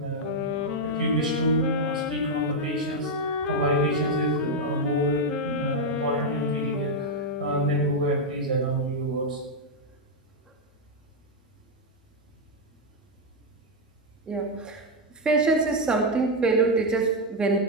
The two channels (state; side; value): normal; both; correlation 0.01